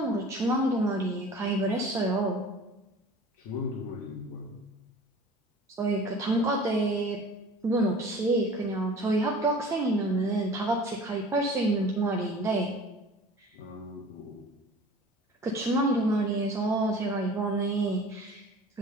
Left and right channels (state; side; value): normal; both; correlation 0.43